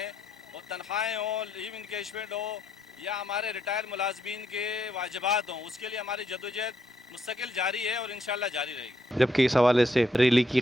ہیں۔ اور تنخواہیں ہوں، لیو انکیشمنٹ ہو یا ہمارے ریٹائر ملازمین کے واجبات ہوں، اس کے لیے ہماری جدوجہد مستقل جاری ہے اور انشاءاللہ جاری رہے گی۔ جبکہ اس حوالے سے ریلی کی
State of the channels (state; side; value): normal; both; correlation 0.76